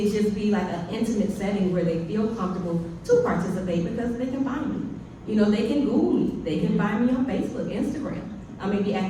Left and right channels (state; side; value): identical; both; correlation 1.00